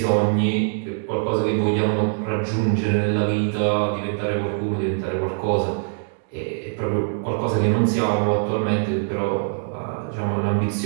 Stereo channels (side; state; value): left; silent; digital silence